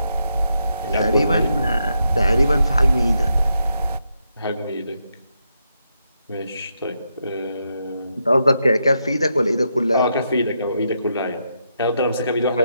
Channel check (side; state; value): both; inverted; correlation -0.81